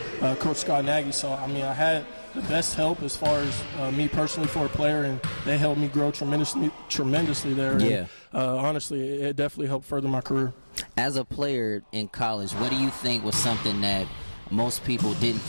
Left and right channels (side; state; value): both; inverted; correlation -1.00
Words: Coach Scott Nagy. So, I mean, I had the best help as far as me personally for a player, and they helped me grow tremendously there. Yeah. And, honestly, it definitely helped further my career. As a player in college, what do you think was something that most people didn't